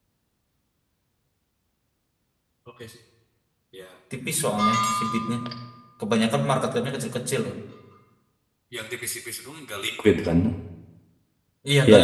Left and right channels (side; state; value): both; identical; correlation 1.00